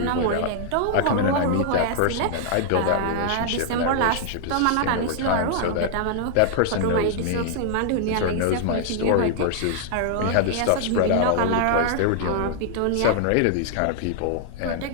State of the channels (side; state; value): both; different; correlation -0.01